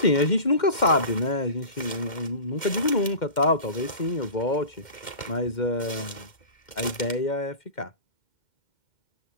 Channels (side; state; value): right; late; 2.1 ms